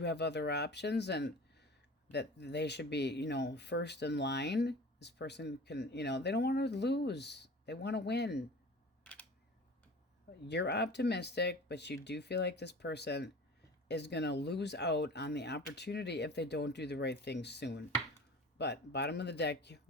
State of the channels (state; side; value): normal; both; correlation 0.39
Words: have other options and that they should be, you know, first in line. This person can, you know, they don't want to lose. They want to win. You're optimistic, but you do feel like this person is going to lose out on the opportunity if they don't do the right thing soon. But bottom of the deck,